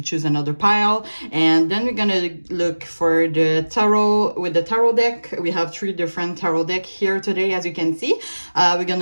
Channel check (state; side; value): inverted; both; correlation -1.00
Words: choose another pile. And then we're gonna look for the tarot with the tarot deck. We have three different tarot decks here today, as you can see. We're